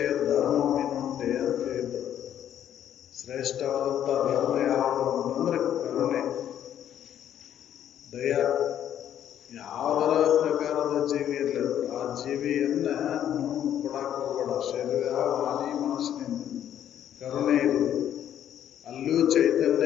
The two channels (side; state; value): right; quieter; 10.4 dB